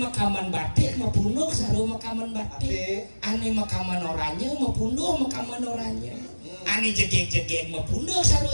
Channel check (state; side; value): inverted; both; correlation -1.00